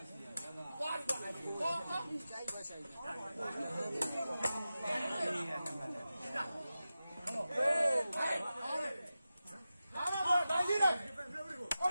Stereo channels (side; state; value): both; inverted; correlation -0.93